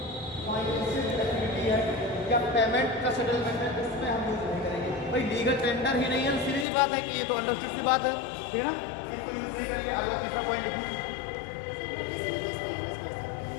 फाइनेंशियल एक्टिविटी है या पेमेंट का सेटलमेंट है उसमें हम यूज नहीं करेंगे। भाई लीगल टेंडर ही नहीं है, सीधी सी बात है कि ये तो अंडरस्टूड सी बात है, ठीक है ना, इसको यूज नहीं करेंगे। अगला तीसरा पॉइंट लिखिए,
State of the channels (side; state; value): right; drops out; at 6.7 s